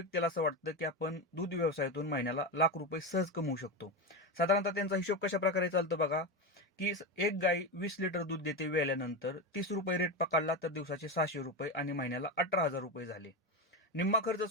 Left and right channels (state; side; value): normal; both; correlation 0.17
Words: असं वाटतं, की आपण दूध व्यवसायातून महिन्याला ₹1,00,000 सहज कमवू शकतो. साधारणतः त्यांचा हिशोब कशाप्रकारे चालतो बघा, की एक गाय 20 लिटर दूध देते वेल्यानंतर ₹30 रेट पकडला तर दिवसाचे ₹600 आणि महिन्याला ₹18,000 झाले. निम्मा खर्च